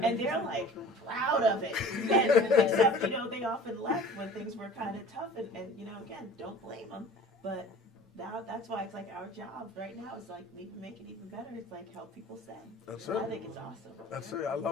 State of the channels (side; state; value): both; normal; correlation 0.44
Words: and they're like proud of it. And except they often left when things were kind of tough, and again, don't blame them, but. Now that's why it's like our job right now is like make it even better. It's like help people stay. That's it. I think it's awesome. That's it. I